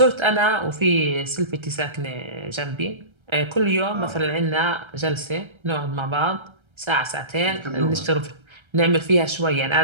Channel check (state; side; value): late; left; 1.3 ms